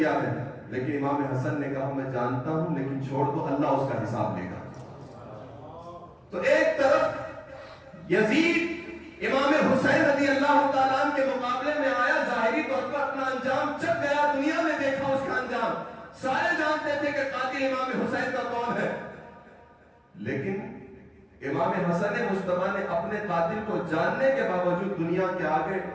ہے؟ لیکن امام حسن نے کہا میں جانتا ہوں لیکن چھوڑ دو، اللہ اس کا حساب لے گا۔ تو ایک طرف یزید امام حسین رضی اللہ تعالیٰ عنہ کے مقابلے میں آیا، ظاہری طور پر اپنا انجام چک گیا، دنیا میں دیکھا اس کا انجام، سارے جانتے تھے کہ قاتل امام حسین کا کون ہے، لیکن امام حسن مصطفیٰ نے اپنے قاتل کو جاننے کے باوجود دنیا کے آگے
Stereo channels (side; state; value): both; identical; correlation 1.00